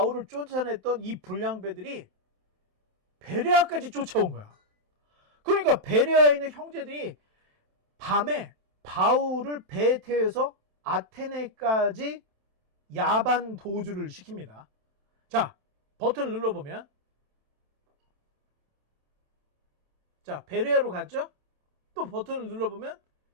쫓아냈던 이 불량배들이 베레아까지 쫓아온 거야. 그러니까 베레아에 있는 형제들이 밤에 바울을 배에 태워서 아테네까지 야반 도주를 시킵니다. 자, 버튼을 눌러보면 자, 베레아로 갔죠? 또 버튼을 눌러보면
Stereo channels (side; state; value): left; late; 29 ms